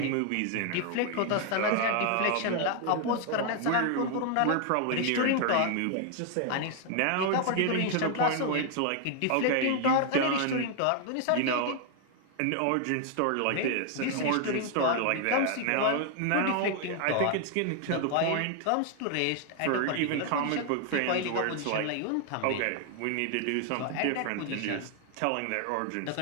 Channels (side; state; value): both; different; correlation 0.00